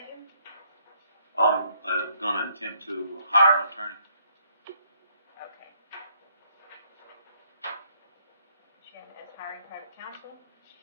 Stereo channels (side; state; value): both; inverted; correlation -0.69